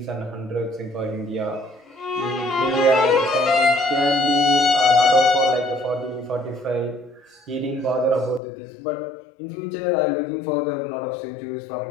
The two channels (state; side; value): drops out; right; at 8.4 s